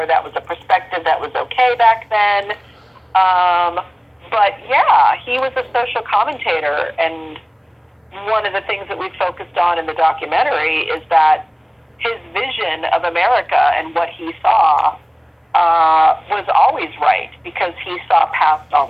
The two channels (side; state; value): both; identical; correlation 1.00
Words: that was a perspective that was okay back then. But yeah, he was a social commentator, and one of the things that we focused on in the documentary is that his vision of America and what he saw was always right, because he saw past all